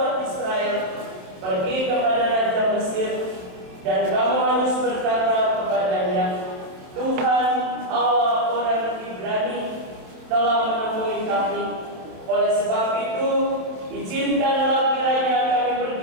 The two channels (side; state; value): left; late; 27 ms